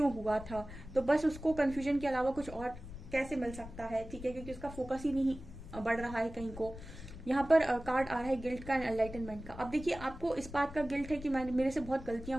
हुआ था, तो बस उसको कंफ्यूजन के अलावा कुछ और कैसे मिल सकता है, ठीक है, क्योंकि उसका फोकस ही नहीं बढ़ रहा है कहीं को। यहाँ पर कार्ड आ रहा है गिल्ट का, एनलाइटनमेंट का। अब देखिए, आपको इस बात का गिल्ट है कि मेरे से बहुत गलतियां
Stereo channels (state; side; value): noise; left; rumble, 13 dB below the sound